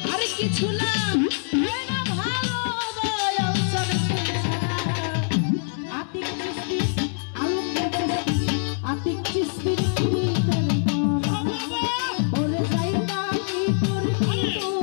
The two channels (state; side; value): silent; right; digital silence